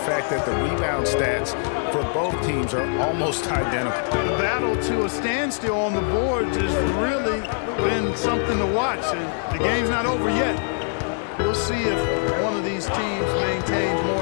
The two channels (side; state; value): right; silent; 61 dB below the other